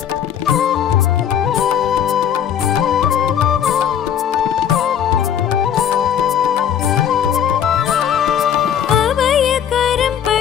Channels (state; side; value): quieter; right; 9.1 dB